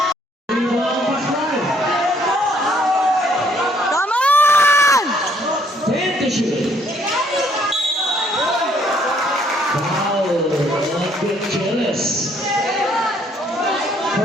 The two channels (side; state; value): both; normal; correlation 0.66